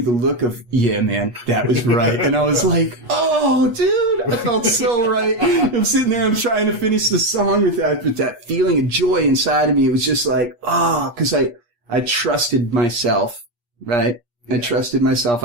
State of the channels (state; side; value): late; left; 8.4 ms